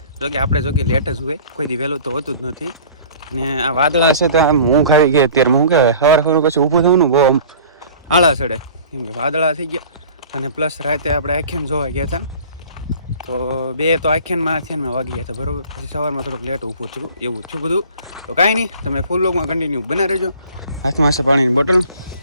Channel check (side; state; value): both; inverted; correlation -0.46